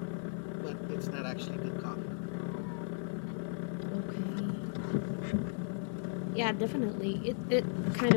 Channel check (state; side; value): silent; right; digital silence